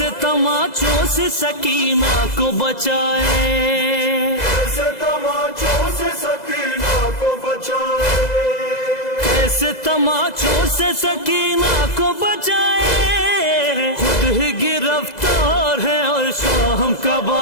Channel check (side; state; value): right; late; 2.0 ms